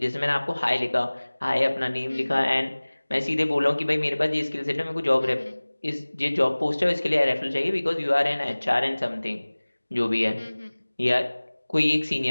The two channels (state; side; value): inverted; both; correlation -1.00